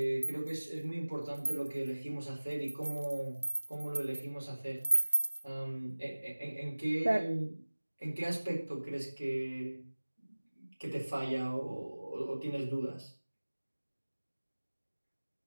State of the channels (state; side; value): inverted; both; correlation -1.00